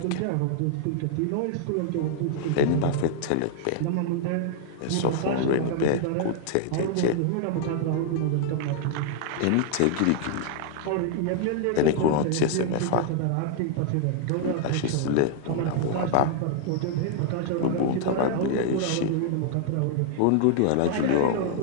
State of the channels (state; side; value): different; both; correlation 0.00